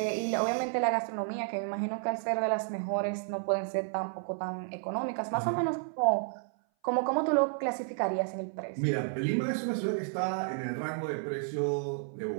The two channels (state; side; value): silent; left; 57 dB below the other